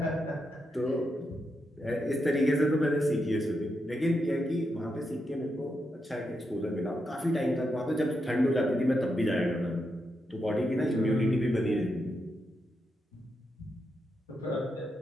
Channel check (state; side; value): normal; both; correlation 0.84